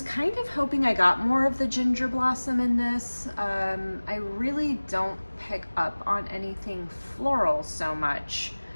kind of hoping I got more of the ginger blossom in this. I really don't pick up on anything floral so much.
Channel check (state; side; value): inverted; both; correlation -1.00